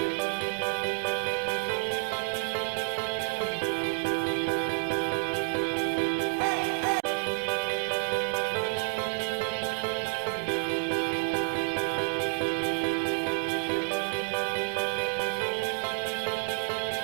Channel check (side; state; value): left; silent; 58 dB below the other